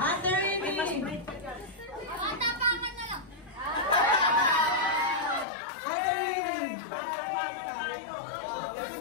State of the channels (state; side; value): drops out; right; at 5.5 s